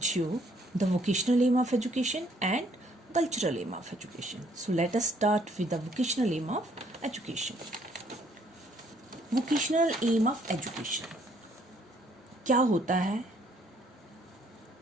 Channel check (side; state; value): both; normal; correlation 0.65